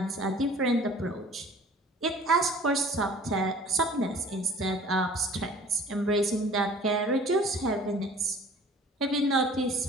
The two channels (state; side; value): normal; both; correlation 0.48